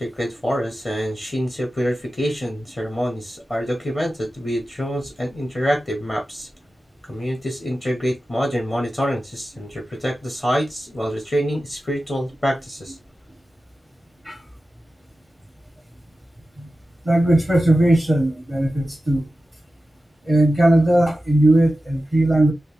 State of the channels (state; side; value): normal; both; correlation 0.94